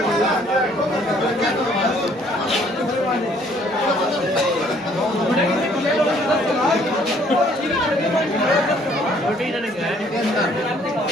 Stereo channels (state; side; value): normal; both; correlation 0.61